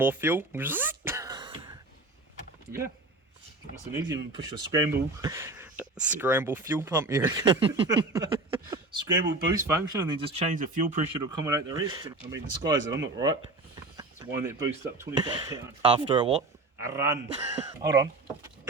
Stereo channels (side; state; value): left; quieter; 3.1 dB